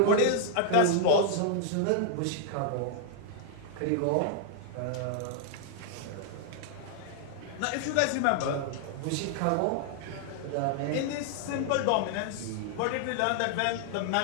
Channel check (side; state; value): both; different; correlation 0.00